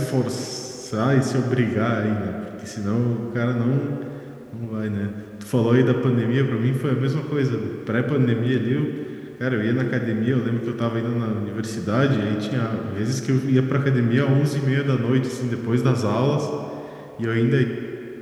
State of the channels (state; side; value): identical; both; correlation 1.00